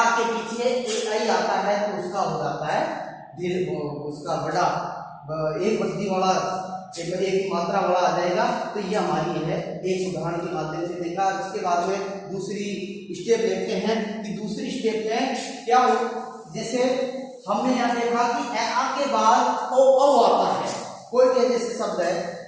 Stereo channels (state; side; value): identical; both; correlation 1.00